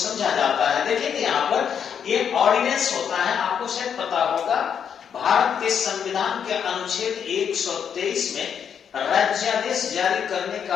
जाता है। देखिए यहाँ पर ये ऑर्डिनेंस होता है, आपको शायद पता होगा। भारत के संविधान के अनुच्छेद 123 में राज्यादेश जारी करने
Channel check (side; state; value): right; quieter; 7.8 dB